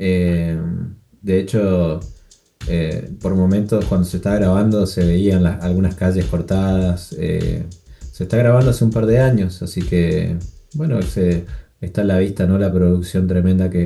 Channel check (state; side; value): identical; both; correlation 1.00